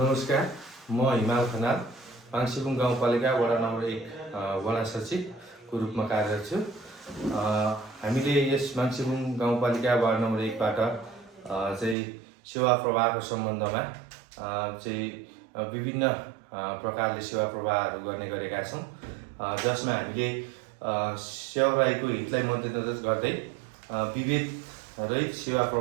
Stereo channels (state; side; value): drops out; left; at 12.0 s